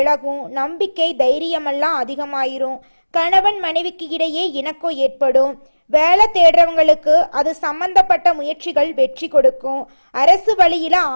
நம்பிக்கை தைரியமெல்லாம் அதிகமாயிரும், கணவன் மனைவிக்கு இடையே இணக்கம் ஏற்படும், வேலை தேடுறவங்களுக்கு அது சம்பந்தப்பட்ட முயற்சிகள் வெற்றி கொடுக்கும், அரசு வழியில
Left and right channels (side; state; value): both; inverted; correlation -1.00